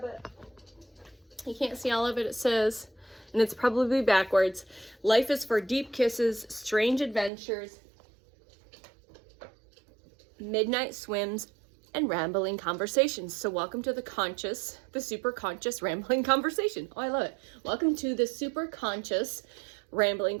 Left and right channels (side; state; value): left; drops out; at 7.3 s